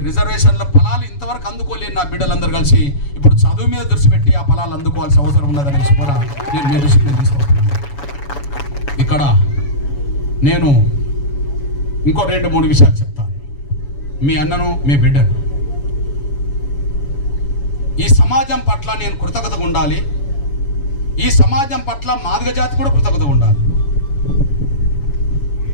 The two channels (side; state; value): right; late; 7.1 ms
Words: రిజర్వేషన్ల ఫలాలు ఇంతవరకు అందుకోలేని నా బిడ్డలందరూ కలిసి ఇప్పుడు చదువు మీద దృష్టి పెట్టి ఆ ఫలాలు అందుకోవాల్సిన అవసరం ఉన్నదనేసి కూడా నేను మీ దృష్టికి తీసుకొస్తున్నాను. ఇక్కడ నేను ఇంకో 2-3 విషయాలు చెప్తాను. మీ అన్నను, మీ బిడ్డను, ఈ సమాజం పట్ల నేను కృతజ్ఞతగా ఉండాలి. ఈ సమాజం పట్ల మాదిగ జాతి కూడా కృతజ్ఞతగా ఉండాలి.